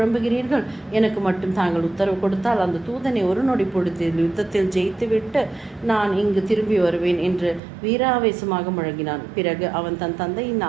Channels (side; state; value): left; drops out; at 7.6 s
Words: எனக்கு மட்டும் தாங்கள் உத்தரவு கொடுத்தால் அந்த தூதனை ஒரு நொடி பொழுதில் யுத்தத்தில் ஜெயித்துவிட்டு நான் இங்கு திரும்பி வருவேன் என்று வீராவேசமாக முழங்கினான். பிறகு அவன் தன் தந்தையின்